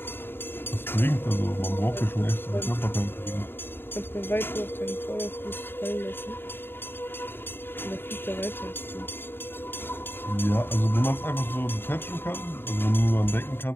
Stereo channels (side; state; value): right; late; 0.10 ms